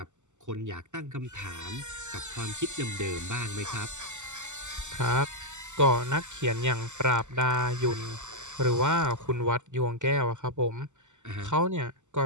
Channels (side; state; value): left; late; 0.84 ms